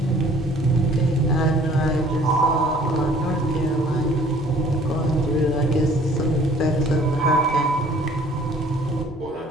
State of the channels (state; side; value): normal; both; correlation 0.55